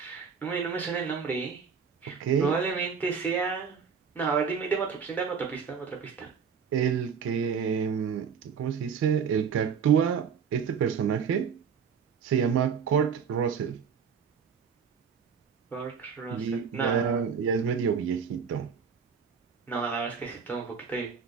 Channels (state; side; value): quieter; left; 6.5 dB